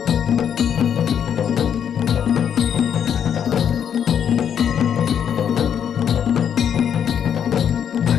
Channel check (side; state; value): right; quieter; 8.5 dB